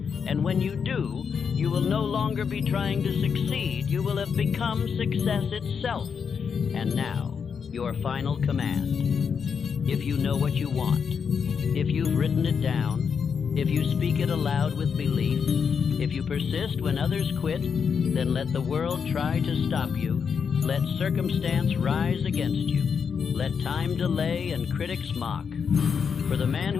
And when you do, you will no longer be trying to succeed, you will have become success itself. And now, your final command. If you know what you want, if you've written it down, if you speak it aloud with belief, if you persist when others quit, then let the world try to stop you. Let circumstance rise against you. Let time delay and critics mock. For the man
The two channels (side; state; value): right; quieter; 6.4 dB